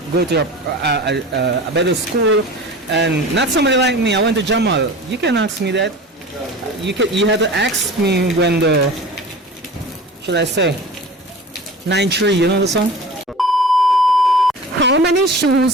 go to a better school, and not somebody like me. I went to Jamal. You can ask me that. You have to ask me when the, should I say, 9-3. You know the song? How How many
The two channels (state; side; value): normal; both; correlation 0.37